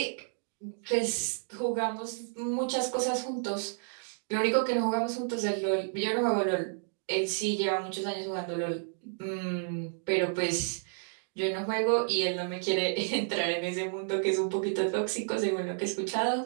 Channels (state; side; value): silent; left; digital silence